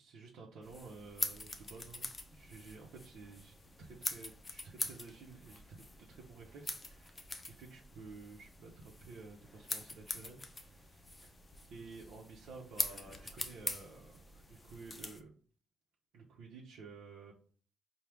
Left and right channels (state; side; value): normal; both; correlation 0.88